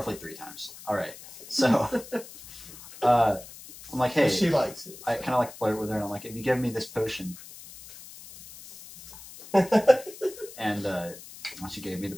3 times. All right. So... I'm like, hey, She likes it. I kind of like flirt with her, and I'm like, if you give me this potion, and once she gave me the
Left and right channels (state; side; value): noise; left; hiss, 16 dB below the sound